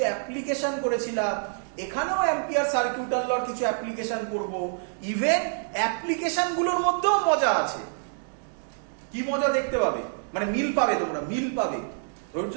অ্যাপ্লিকেশন করেছিলাম, এখানেও অ্যাম্পিয়ার সার্কিউটাল লর কিছু অ্যাপ্লিকেশন করব। ইভেন অ্যাপ্লিকেশন গুলোর মধ্যেও মজা আছে। কি মজা দেখতে পাবে, মানে মিল পাবে, তোমরা মিল পাবে। ধৈর্য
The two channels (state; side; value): silent; left; digital silence